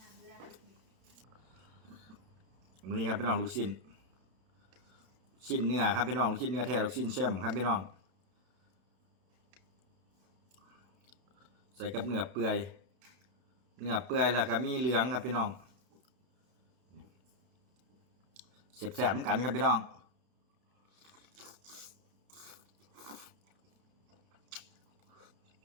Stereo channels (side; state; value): left; late; 32 ms